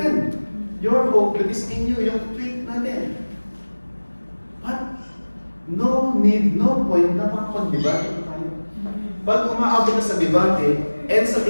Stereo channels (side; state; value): both; inverted; correlation -1.00